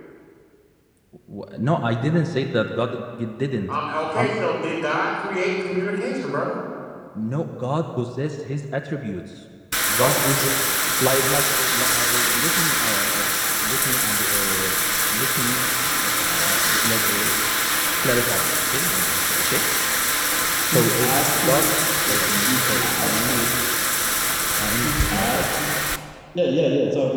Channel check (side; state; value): both; identical; correlation 1.00